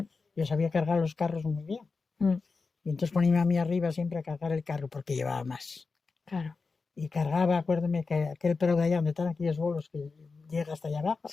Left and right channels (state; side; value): quieter; right; 4.4 dB